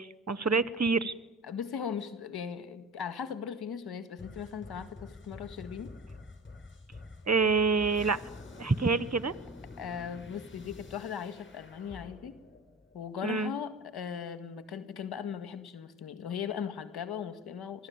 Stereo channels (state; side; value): normal; both; correlation 0.34